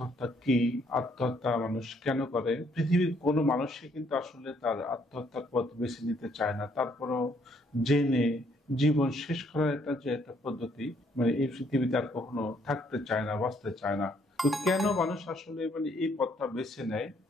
কি, আত্মহত্যা মানুষ কেন করে? পৃথিবীর কোনো মানুষই কিন্তু আসলে তার আত্মহত্যার পথ বেছে নিতে চায় না, তারপরও জেনে জীবন শেষ করার একটা পদ্ধতি এই পৃথিবীতে আর কখনো থাকতে চায় না, বাঁচতে চায় না। তো কেন মানুষ আসলে এই পথটা বেছে নেয়?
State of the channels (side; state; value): both; normal; correlation 0.68